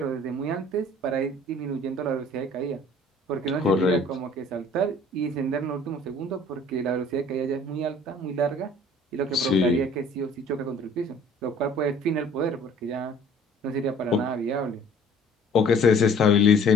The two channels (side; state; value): both; normal; correlation 0.51